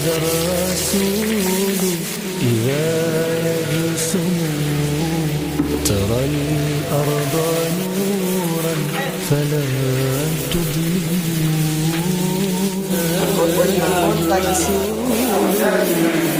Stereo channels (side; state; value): both; identical; correlation 1.00